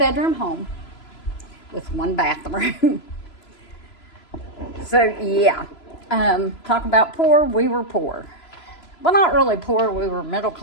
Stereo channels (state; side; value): late; right; 3.0 ms